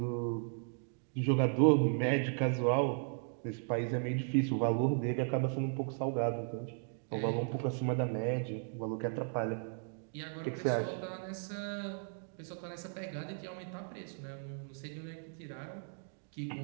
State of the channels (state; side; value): silent; left; 54 dB below the other